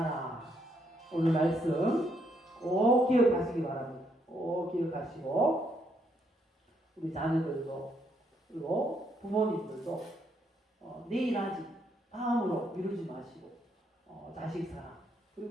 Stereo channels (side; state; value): both; normal; correlation 0.74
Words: 오늘 말씀 꼭 기억하시기 바랍니다. 꼭 기억하시고 우리 자녀들도 그리고 부모님들도 내일 하지 다음으로 미루지 마시고 자식 사랑